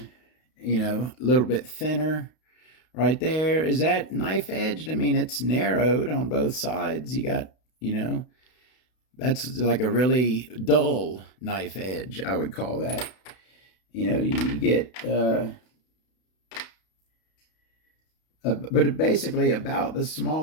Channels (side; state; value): right; late; 32 ms